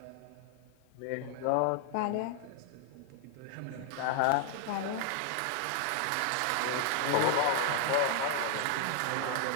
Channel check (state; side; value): different; both; correlation 0.00